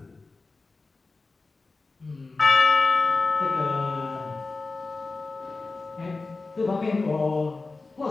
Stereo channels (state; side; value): quieter; right; 3.7 dB